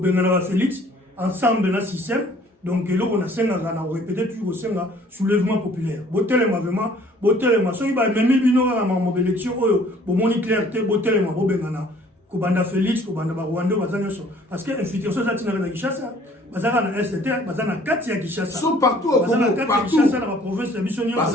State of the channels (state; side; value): normal; both; correlation 0.56